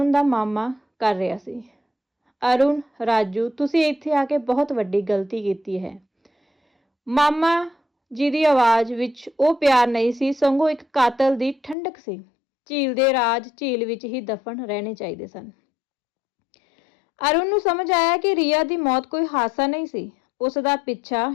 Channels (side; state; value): right; drops out; at 11.8 s